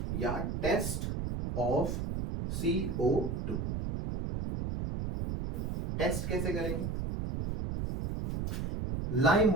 या टेस्ट ऑफ CO2। टेस्ट कैसे करेंगे, लाइम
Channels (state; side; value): noise; right; rumble, 3 dB below the sound